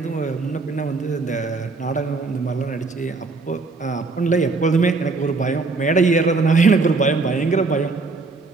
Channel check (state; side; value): quieter; left; 3.9 dB